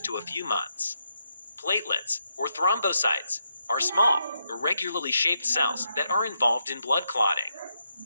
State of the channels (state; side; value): inverted; both; correlation -0.81